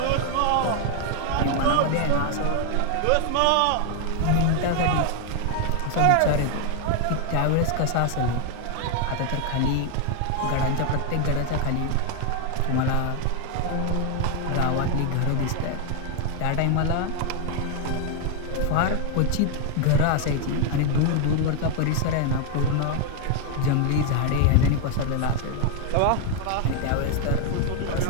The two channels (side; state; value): both; different; correlation 0.00